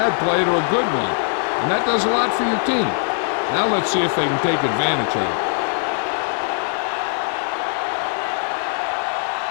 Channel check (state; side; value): silent; right; 56 dB below the other